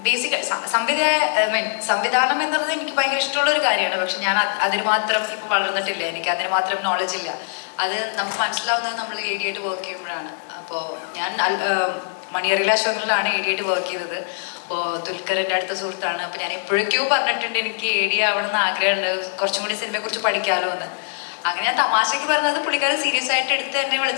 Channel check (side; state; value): right; silent; digital silence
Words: ബേസിക് സംവിധാനം എന്നുള്ളത് എനിക്ക് ഭയങ്കര ഇഷ്ടമുള്ള ഒരു കാര്യമാണ്. പക്ഷെ ഞാൻ അതിന് മാത്രം ഇപ്പം വളർന്നിട്ടില്ല, എനിക്ക് അതിന് മാത്രം നോളജ് ഇല്ല. അത് നമുക്ക് മനസ്സിലാവുന്നത് നമ്മൾ ഏരിയയായിട്ട് വർക്ക് ചെയ്യുമ്പോഴാണ്. അപ്പോൾ ഞാൻ മണിയറിയിലെ അശോകനിലാണ് ഏരിയയായിട്ട് വർക്ക് ചെയ്തത്. അപ്പോൾ ദുൽഖറിൻ്റെ അടുത്ത സുഹൃത്താണ്. അപ്പോൾ ഞാൻ എപ്പോഴേക്കോ പറഞ്ഞിട്ടുണ്ട് എനിക്ക് ഏരിയ ആവണമെന്ന് ആഗ്രഹമുണ്ട്, കുറച്ചും കൂടി സിനിമയെക്കുറിച്ച് പഠിക്കാമല്ലോ എന്ന്. അങ്ങനെ ഞാൻ തമാശയ്ക്ക് പറഞ്ഞത് പുള്ളിക്കാരൻ സീരിയസ് ആയിട്ട് എടുത്ത് എന്നെ